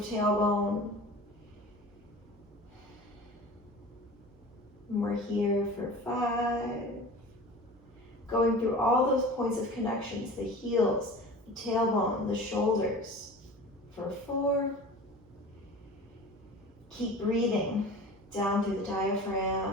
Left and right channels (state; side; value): noise; right; hum, 26 dB below the sound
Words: tailbone. And we're here for 5. Going through all those points of connections, the heels, the tailbone, the shoulders, for 4. Keep breathing down through the